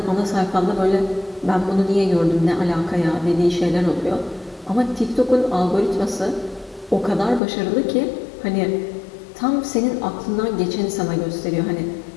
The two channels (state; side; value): drops out; right; at 7.4 s